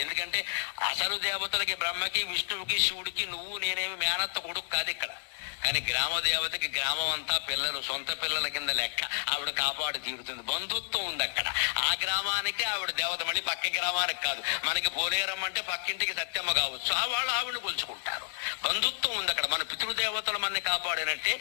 ఎందుకంటే అసలు దేవతలకి, బ్రహ్మకి, విష్ణువుకి, శివుడికి నువ్వు నేనేమి మేనత్త కొడుకు కాదు ఇక్కడ. కానీ గ్రామ దేవతకి గ్రామం అంతా పిల్లలు, సొంత పిల్లల కింద లెక్క. ఆవిడ కాపాడు తీరుతుంది. బంధుత్వం ఉంది అక్కడ. ఆ గ్రామానికి ఆవిడ దేవత, మళ్ళీ పక్క గ్రామానికి కాదు. మనకి పోలేరమ్మ అంటే పక్కింటికి సత్యమ్మ కావచ్చు, వాళ్ళు ఆవిడని కొలుచుకుంటారు. బంధుత్వం ఉంది అక్కడ. మన పితృదేవతలు మనని కాపాడినట్టే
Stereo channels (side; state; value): right; silent; 57 dB below the other